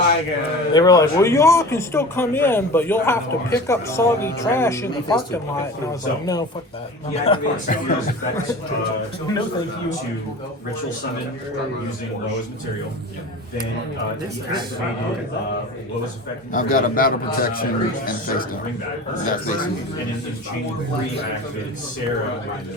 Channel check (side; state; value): both; normal; correlation 0.35